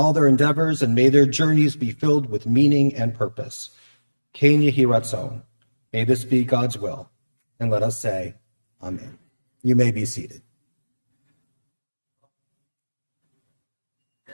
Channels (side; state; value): both; inverted; correlation -1.00